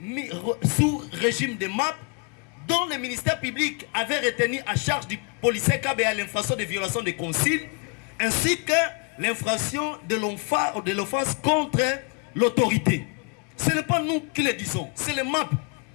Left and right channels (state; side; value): quieter; right; 32.7 dB